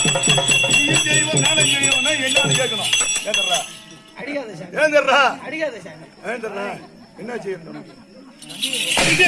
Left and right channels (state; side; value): identical; both; correlation 1.00